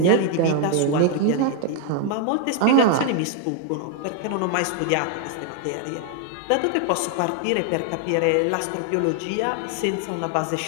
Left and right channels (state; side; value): different; both; correlation 0.00